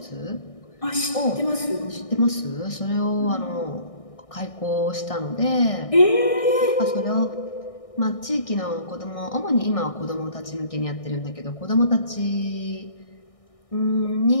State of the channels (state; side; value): late; right; 1.6 ms